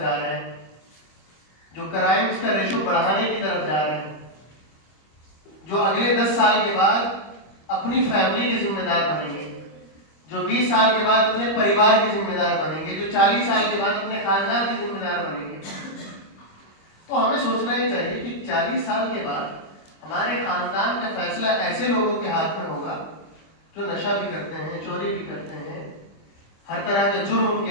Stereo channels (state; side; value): late; right; 25 ms